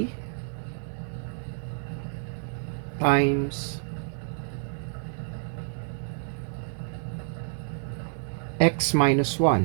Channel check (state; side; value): silent; left; digital silence